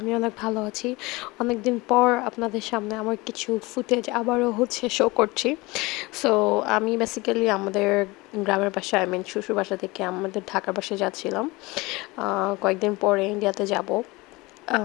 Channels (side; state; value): right; quieter; 22.9 dB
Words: আমি অনেক ভালো আছি। অনেকদিন পর আপনাদের সামনে আমার কিছু ফুটেজ আবারও শো করছি। সো আমি বেসিক্যালি আমাদের গ্রামের বাসায় শ্বশুর বাসা থেকে আমাদের ঢাকার বাসায় যাচ্ছিলাম। কয়েকদিন পরে ইন্ডিয়াতে যাব।